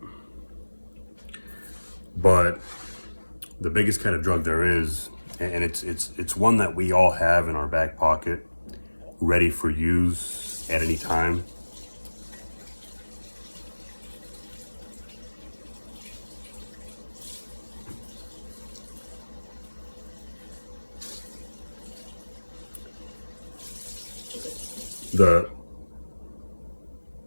but the biggest kind of drug there is, and it's one that we all have in our back pocket, ready for use at any time. The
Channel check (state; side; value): inverted; both; correlation -1.00